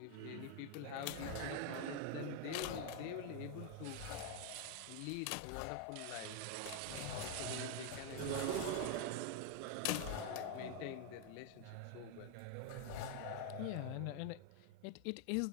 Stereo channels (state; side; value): different; both; correlation 0.01